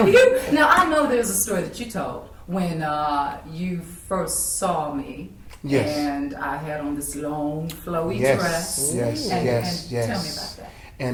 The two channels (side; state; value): both; identical; correlation 1.00